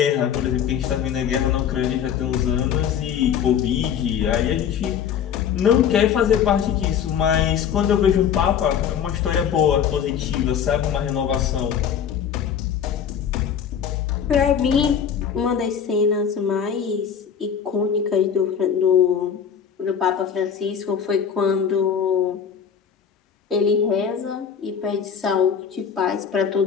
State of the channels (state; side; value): quieter; right; 8.0 dB